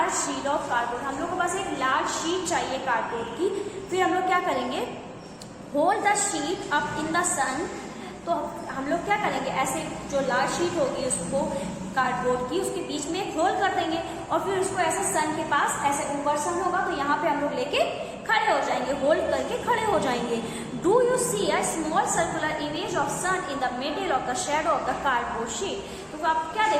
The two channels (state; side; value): identical; both; correlation 1.00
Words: sheet of cardboard, हम लोग को बस एक लार्ज शीट चाहिए कार्डबोर्ड की। फिर हम लोग क्या करेंगे, hold the sheet up in the sun, तो हम लोग क्या करेंगे, ऐसे जो लार्ज शीट होगी उसको कार्डबोर्ड की उसके बीच में एक होल कर देंगे और फिर उसको ऐसे सन के पास, ऐसे ऊपर सन होगा तो यहाँ पे हम लोग लेके खड़े हो जाएंगे, होल्ड करके खड़े हो जाएंगे। Do you see a small circular image of sun in the middle of the shadow of the cardboard sheet. तो आप क्या